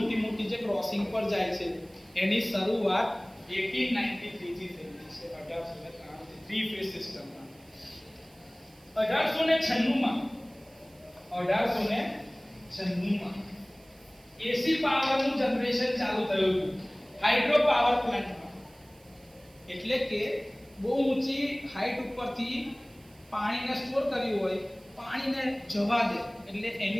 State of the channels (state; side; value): noise; right; hiss, 27 dB below the sound